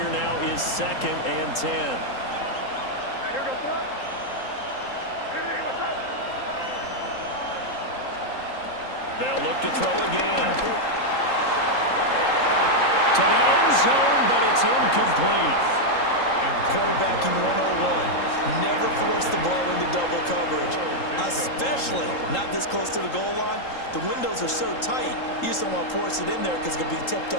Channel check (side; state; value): right; late; 3.8 ms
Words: now is 2nd and 10. They'll look to throw again. To the end zone, but it's incomplete. Quarterbacking 101. Never force the ball into double coverage, especially not this close to the goal line. The windows are so tight, you just don't want to force it in there because it could be tipped